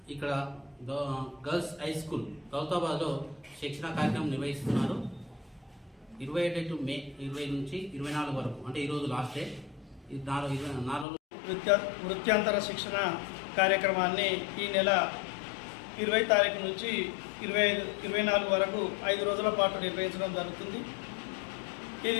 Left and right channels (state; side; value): drops out; right; at 11.1 s